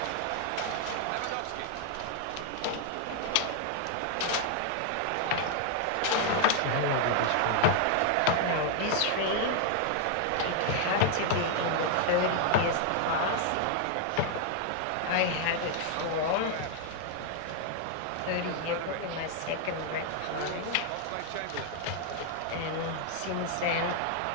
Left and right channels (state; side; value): different; both; correlation 0.00